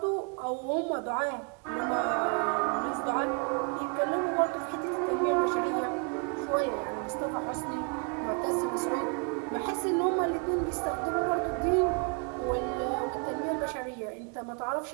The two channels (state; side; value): quieter; left; 38.3 dB